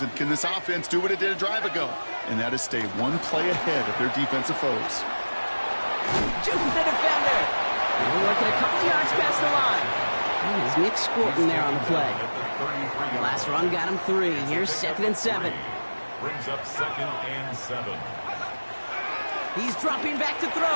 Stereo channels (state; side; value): inverted; both; correlation -1.00